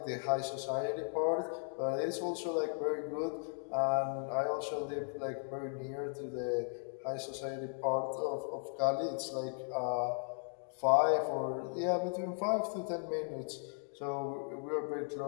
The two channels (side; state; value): right; silent; 53 dB below the other